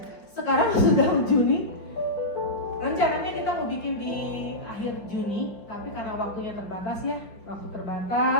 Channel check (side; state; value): right; late; 4.9 ms